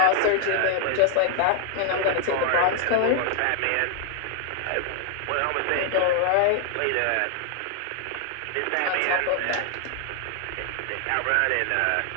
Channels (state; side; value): different; both; correlation 0.00